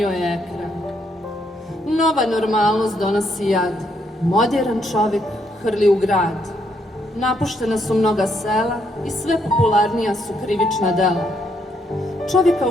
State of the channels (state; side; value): normal; both; correlation 0.74